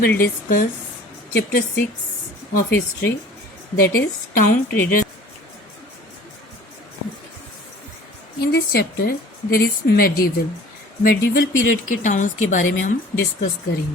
discuss chapter 6 of history, that is town traders. In this chapter there is medieval period के towns के बारे में हम discuss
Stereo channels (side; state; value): both; normal; correlation 0.47